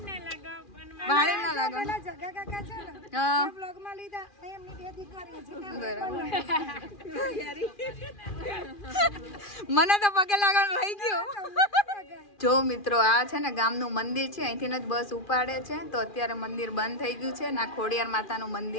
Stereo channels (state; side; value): late; right; 2.4 ms